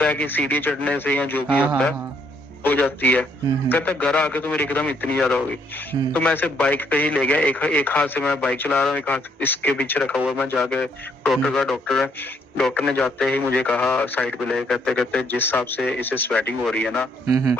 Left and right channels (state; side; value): normal; both; correlation 0.69